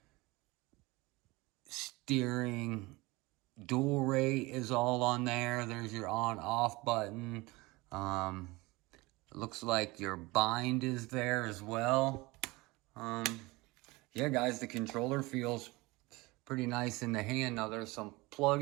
steering dual rate is all on there. There's your on-off button. It looks like your bind is there as well. Yeah, guys, the controller feels pretty nice in the hand. Now there's some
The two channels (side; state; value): left; quieter; 22.6 dB